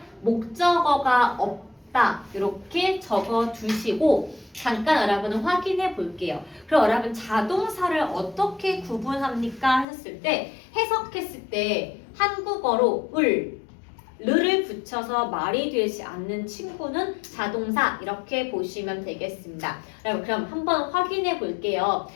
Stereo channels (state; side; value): drops out; right; at 9.9 s